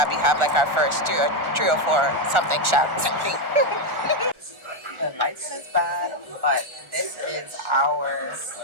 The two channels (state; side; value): late; left; 1.4 ms